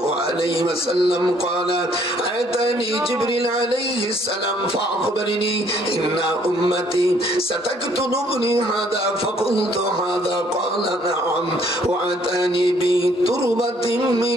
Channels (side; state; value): both; normal; correlation 0.63